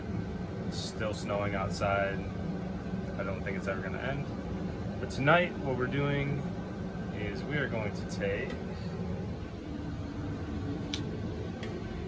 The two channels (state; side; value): identical; both; correlation 1.00